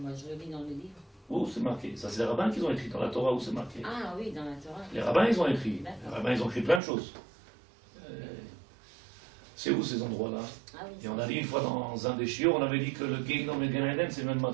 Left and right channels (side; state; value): left; drops out; at 6.8 s